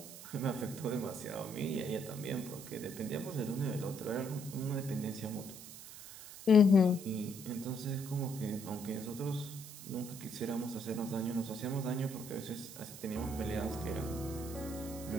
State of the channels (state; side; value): noise; right; hiss, 13 dB below the sound